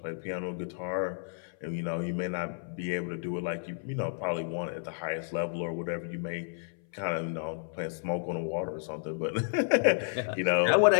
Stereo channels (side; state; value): right; silent; 57 dB below the other